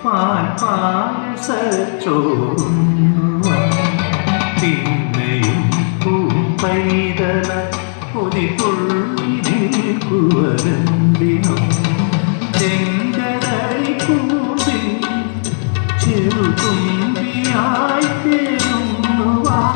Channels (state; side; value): silent; right; 68 dB below the other